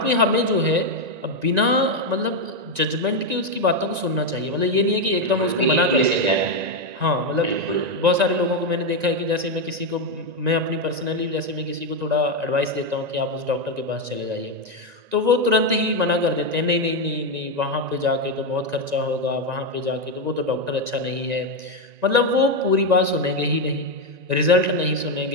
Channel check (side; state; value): left; late; 1.9 ms